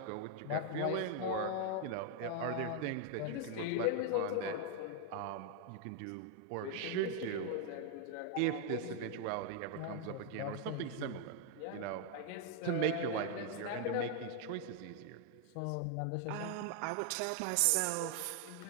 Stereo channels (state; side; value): different; both; correlation 0.00